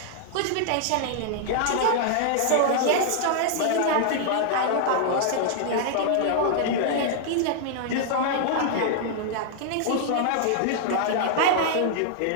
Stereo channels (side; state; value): both; different; correlation -0.01